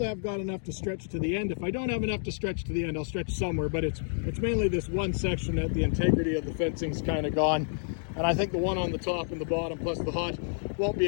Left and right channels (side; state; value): right; silent; digital silence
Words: I've got enough to stretch to the end. If I don't have enough to stretch to the end, I'll stretch somewhere, but it's mainly this one section that the integrity of the fencing's kind of gone. And I think the one on the top and the bottom plus the hot won't